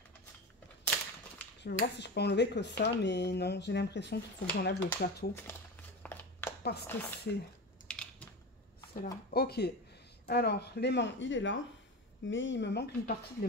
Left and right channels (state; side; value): normal; both; correlation 0.25